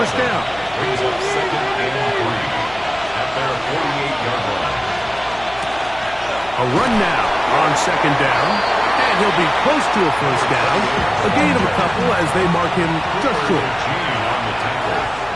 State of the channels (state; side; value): noise; left; hum, 20 dB below the sound